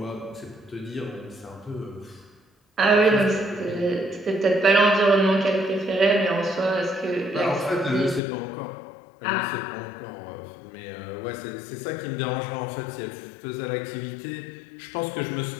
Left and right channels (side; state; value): right; drops out; at 8.2 s